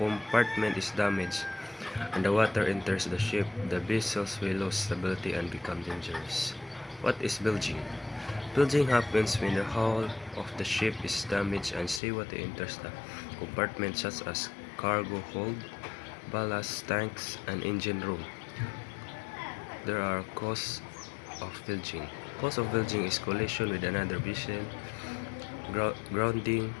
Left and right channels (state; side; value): drops out; right; at 12.0 s